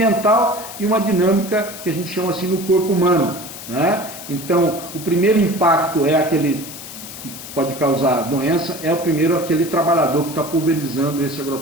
e uma dinâmica que a gente chama assim no corpo humano, né? Então, o primeiro impacto é aquele que pode causar doença, é o primeiro aquele trabalhador que está pulverizando esse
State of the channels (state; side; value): noise; left; hiss, 12 dB below the sound